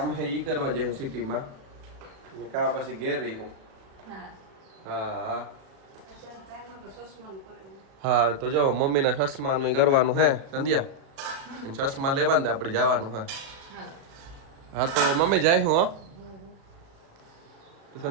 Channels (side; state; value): left; late; 37 ms